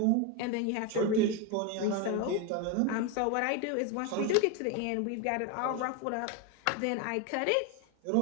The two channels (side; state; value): both; different; correlation 0.02